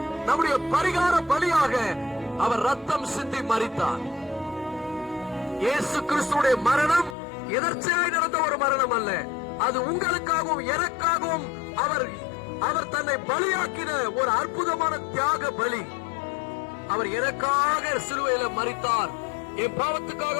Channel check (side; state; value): right; drops out; at 7.2 s